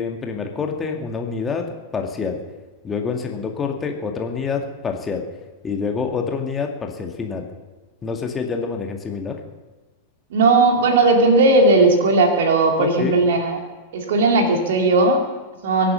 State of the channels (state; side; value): normal; both; correlation -0.12